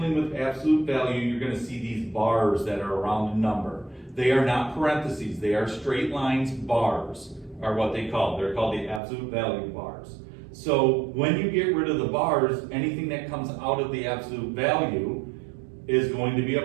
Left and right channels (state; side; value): drops out; left; at 9.0 s